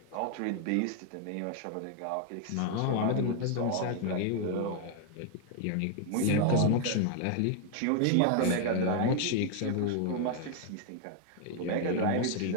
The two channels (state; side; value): different; both; correlation 0.00